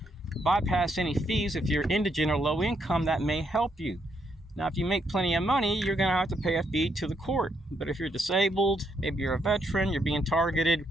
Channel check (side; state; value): both; normal; correlation 0.76